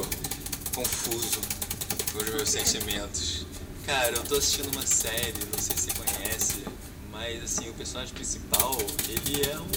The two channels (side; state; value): both; identical; correlation 1.00